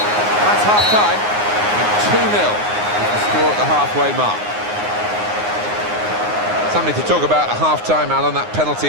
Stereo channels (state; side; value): late; left; 9.6 ms